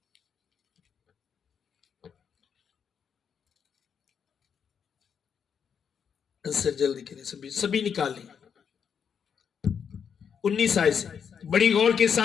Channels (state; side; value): quieter; right; 7.2 dB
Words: आंसर जल्दी करें, सभी निकाल लें। 19 आयत से बड़ी गौर के